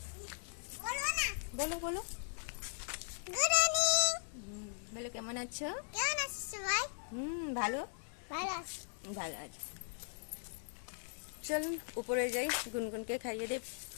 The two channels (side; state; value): right; silent; digital silence